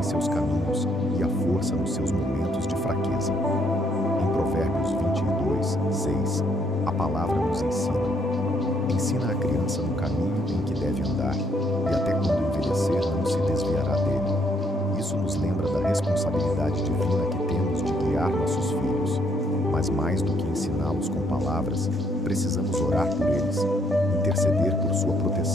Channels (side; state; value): both; normal; correlation 0.70